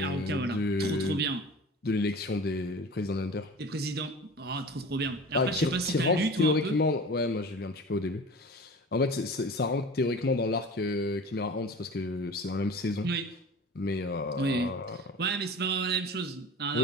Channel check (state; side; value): normal; both; correlation 0.38